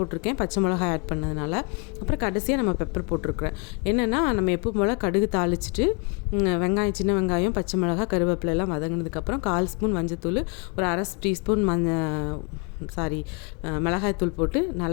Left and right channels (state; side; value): quieter; right; 35.0 dB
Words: பச்சை மிளகாய் ஆட் பண்ணதுனால. அப்புறம் கடைசியாக நம்ம பெப்பர் போட்டிருக்கிறேன். என்னென்னா நம்ம எப்போ போல் கடுகு தாளிச்சிட்டு வெங்காயம், சின்ன வெங்காயம், பச்சை மிளகாய், கருவேப்பிலை எல்லாம் வதங்கினதுக்கப்புறம் 1/4 ஸ்பூன் மஞ்சத்தூள், ஒரு அரை டீஸ்பூன் மிளகாய்த்தூள் போட்டு